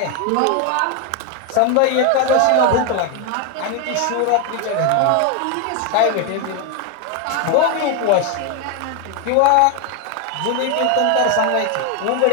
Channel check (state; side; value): different; both; correlation 0.01